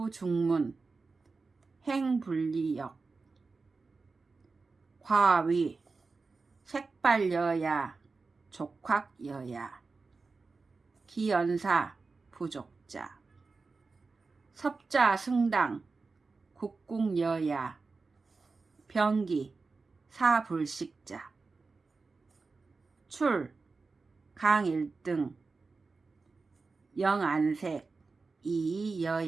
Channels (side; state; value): left; quieter; 4.1 dB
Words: 행불리역 과위 색발여야 족확여야 기연사 부족자 섭자 승당 국궁여야 병기 사불식자 출 강일등 영안색